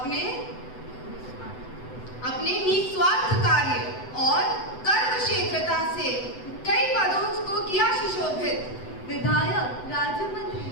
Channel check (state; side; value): late; right; 8.0 ms